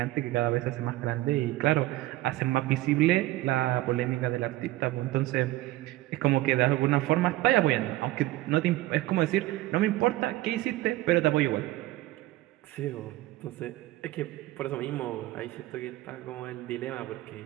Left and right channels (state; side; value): quieter; left; 17.3 dB